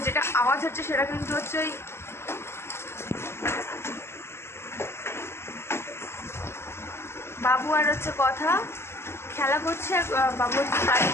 যেটা আওয়াজ হচ্ছে সেটা কিন্তু হচ্ছে ওই বাবু আর হচ্ছে কথা খেলা করছে। বাবু হচ্ছে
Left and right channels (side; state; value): right; late; 0.12 ms